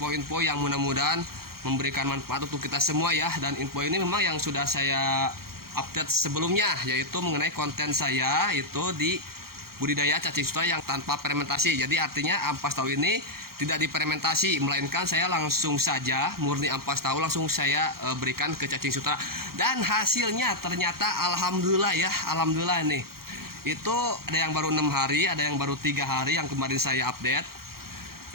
yang mudah-mudahan memberikan manfaat untuk kita semua ya. Dan info ini memang yang sudah saya update sebelumnya, yaitu mengenai konten saya itu di budidaya cacing sutra yang tanpa fermentasi. Jadi artinya ampas tahu ini tidak difermentasi, melainkan saya langsung saja murni ampas tahu langsung saya berikan ke cacing sutra. Dan hasilnya ternyata alhamdulillah ya, alhamdulillah nih. Itu ada yang baru 6 hari, ada yang baru 3 hari yang kemarin saya update.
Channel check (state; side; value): late; left; 0.94 ms